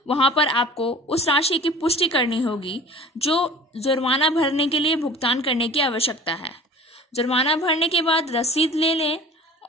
वहां पर आपको उस राशि की पुष्टि करनी होगी जो जुर्माना भरने के लिए भुगतान करने की आवश्यकता है। जुर्माना भरने के बाद रसीद ले लें।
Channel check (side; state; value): both; normal; correlation 0.43